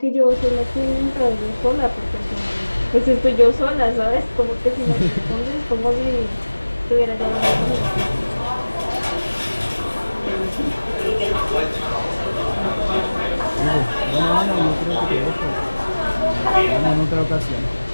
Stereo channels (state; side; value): inverted; both; correlation -1.00